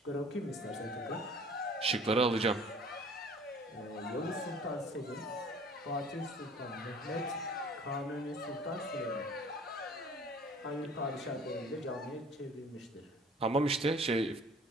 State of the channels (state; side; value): normal; both; correlation 0.49